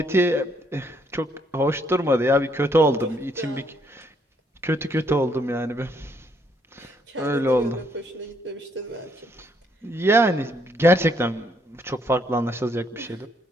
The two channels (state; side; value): normal; both; correlation 0.70